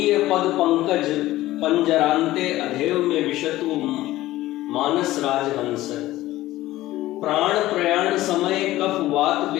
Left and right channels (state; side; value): quieter; right; 16.2 dB